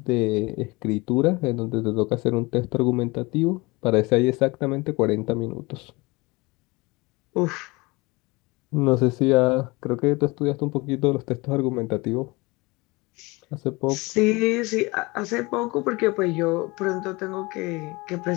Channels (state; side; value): quieter; right; 24.2 dB